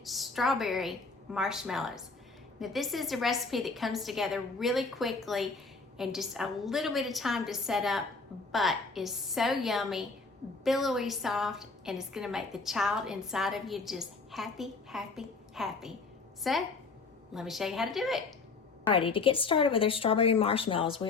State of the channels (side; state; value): right; quieter; 4.1 dB